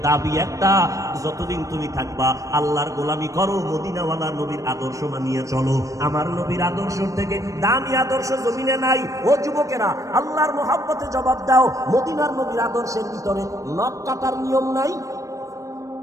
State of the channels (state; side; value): late; left; 0.16 ms